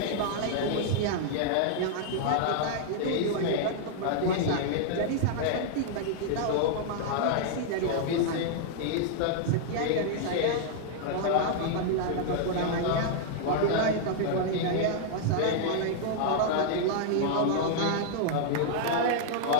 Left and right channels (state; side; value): different; both; correlation -0.01